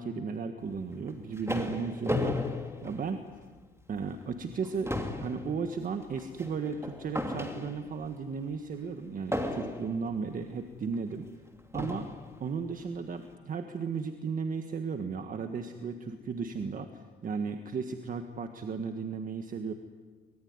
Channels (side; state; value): left; quieter; 3.1 dB